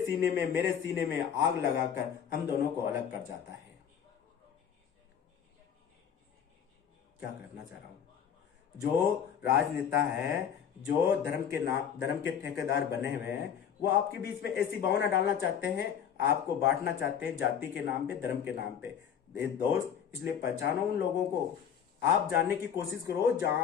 सीने में मेरे सीने में आग लगाकर हम दोनों को अलग कर जाता है। क्या करना चाह रहा हूं, जो राजनेता है, जो धर्म के ठेकेदार बने हुए हैं, वो आपके बीच में ऐसी भावना डालना चाहते हैं, आपको बांटना चाहते हैं जाति के नाम पे, धर्म के नाम पे। दोस्त, इसलिए पहचानो उन लोगों को, आप जानने की कोशिश करो जहां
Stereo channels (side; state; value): right; quieter; 8.3 dB